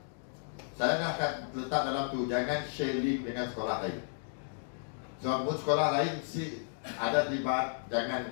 saya dah akan letak dalam tu, jangan share link dengan sekolah lain. Sebab sekolah lain ada terlibat, jangan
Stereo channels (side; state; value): right; silent; digital silence